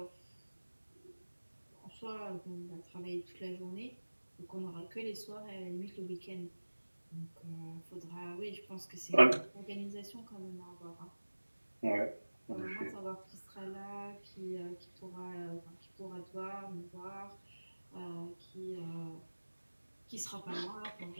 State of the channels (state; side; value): inverted; both; correlation -1.00